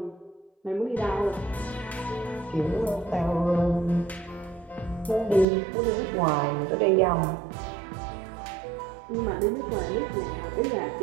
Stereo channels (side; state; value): left; drops out; at 5.5 s